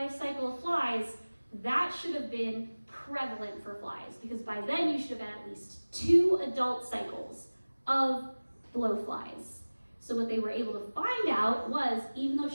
cycle of flies, that should have been prevalent for flies, because by then you should have had at least 2 adult cycles of blowflies. So what they were able to find out was, even though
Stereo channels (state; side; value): inverted; both; correlation -1.00